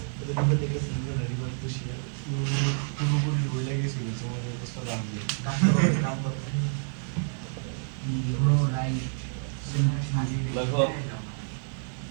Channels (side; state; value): left; silent; 59 dB below the other